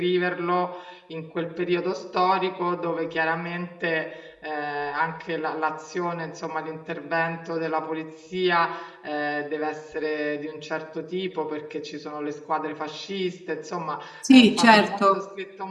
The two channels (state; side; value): identical; both; correlation 1.00